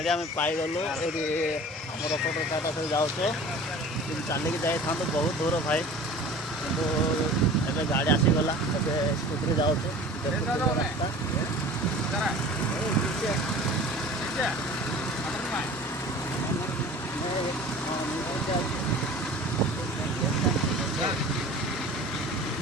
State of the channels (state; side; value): normal; both; correlation 0.41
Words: आम पाईगलु ये आम रपटर टाटा से जाऊे चलिकी जाई था बहुत दूर भाई किंतु एबे गाड़ी आसीगला स्कूटी जाऊे